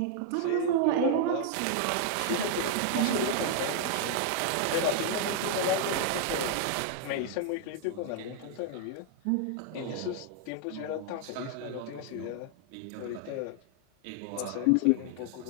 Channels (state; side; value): different; both; correlation 0.00